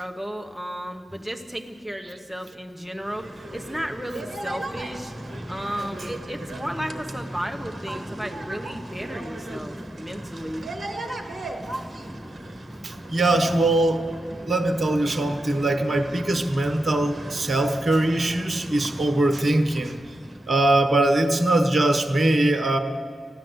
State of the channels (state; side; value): normal; both; correlation 0.88